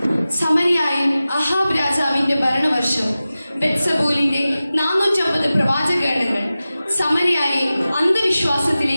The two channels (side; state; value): both; inverted; correlation -0.95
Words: സമരിയായിൽ അഹാബ് രാജാവിന്റെ ഭരണവർഷം ബെത്സബൂലിന്റെ 450 പ്രവാചകഗണങ്ങൾ സമരിയായെ